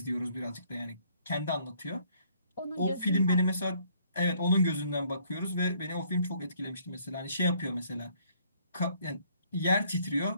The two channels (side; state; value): both; inverted; correlation -0.64